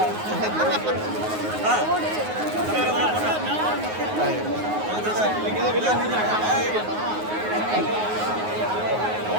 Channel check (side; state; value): left; late; 9.5 ms